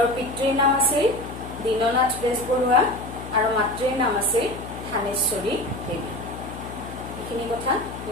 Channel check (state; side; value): noise; left; hum, 11 dB below the sound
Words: পিতৃৰ নাম আছিল দীননাথ বেজবৰুৱা আৰু মাতৃৰ নাম আছিল থানেশ্বৰী দেৱী এইখিনি কথা